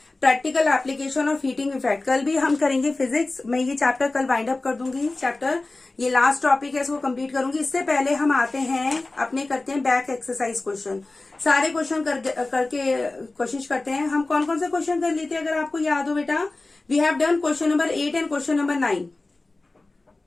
practical application of heating effect. कल भी हम करेंगे फिजिक्स, मैं ये चैप्टर कल वाइंड अप कर दूंगी। चैप्टर ये लास्ट टॉपिक है, इसको कंप्लीट करूंगी। इससे पहले हम आते हैं अपने, करते हैं बैक एक्सरसाइज क्वेश्चन। सारे क्वेश्चन करके कोशिश करते हैं। हम कौन कौन से क्वेश्चन कर लेते हैं अगर आपको याद हो बेटा? We have done question number 8 and question number 9।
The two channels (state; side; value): quieter; right; 3.1 dB